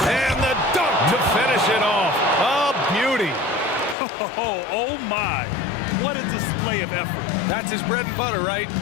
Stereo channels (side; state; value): right; drops out; at 4.0 s